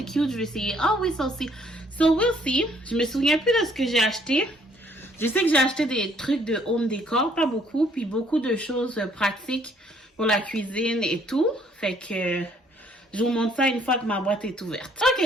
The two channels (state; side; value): normal; both; correlation 0.64